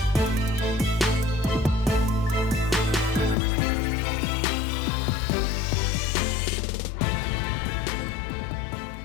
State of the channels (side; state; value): right; drops out; at 3.4 s